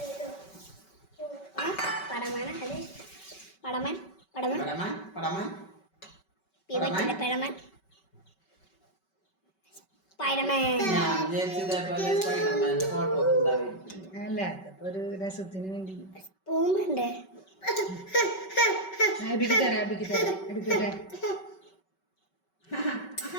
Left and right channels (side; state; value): right; late; 5.3 ms